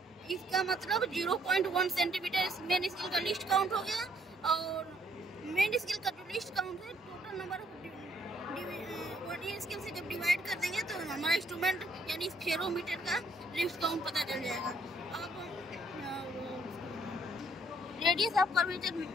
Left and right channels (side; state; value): both; normal; correlation 0.67